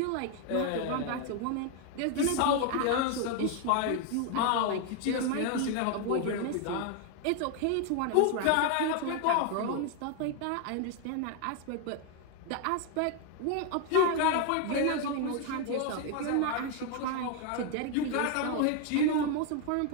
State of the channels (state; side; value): different; both; correlation 0.00